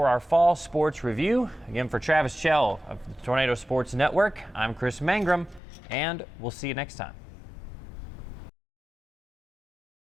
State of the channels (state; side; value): drops out; right; at 5.6 s